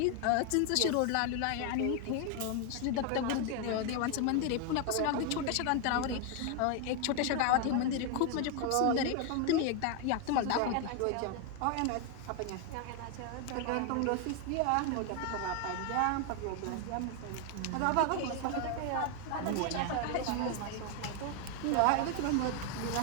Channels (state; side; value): different; both; correlation 0.01